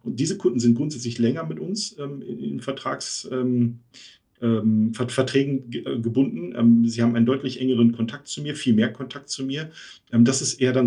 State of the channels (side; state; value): both; identical; correlation 1.00